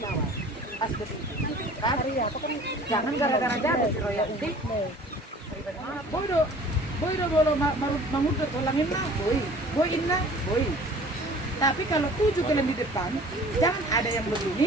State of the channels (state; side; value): normal; both; correlation 0.47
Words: Pas begitu. Kan? Jangan gara-gara jadi si royalti. Boy bolo mangudut tulangin na, boy inna, boy. Tapi kalau 7 kalian di depan, jangan ada yang